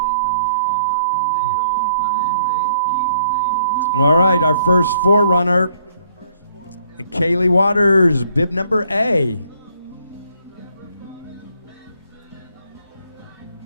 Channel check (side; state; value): both; inverted; correlation -0.65